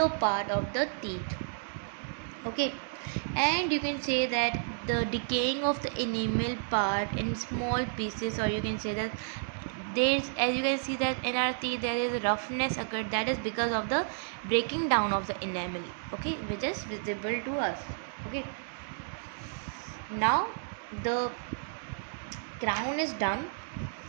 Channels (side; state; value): left; silent; digital silence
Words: part of the teeth. Okay, and you can say that the decaying of the enamel part in small pieces, or you can say that there's, as you can see that in our teeth there is roughness occurred, that is because of the breaking down of the enamel. Okay, which is visible to us. Okay, now the crown is done.